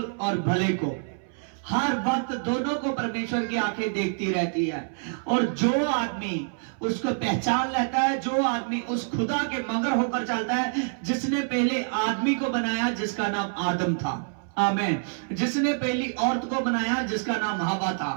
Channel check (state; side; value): silent; left; 61 dB below the other